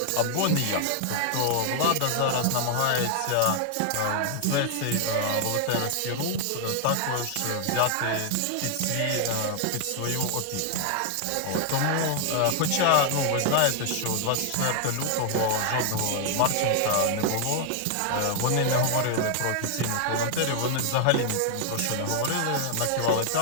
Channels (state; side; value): different; both; correlation 0.00